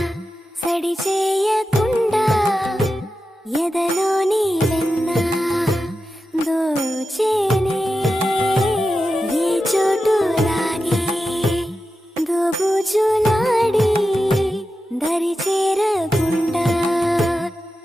సడి చేయకుండా ఎదలోని వెన్న దోచేనే ఏ చోటు లాగే దోబుజులాడి దరి చేరకుండా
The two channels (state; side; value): normal; both; correlation 0.91